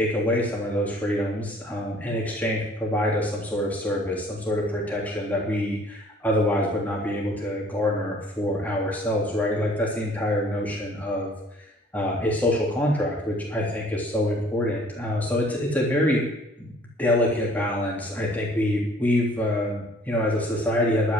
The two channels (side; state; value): both; normal; correlation 0.55